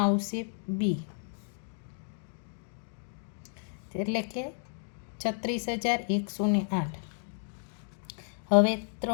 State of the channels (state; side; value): silent; right; digital silence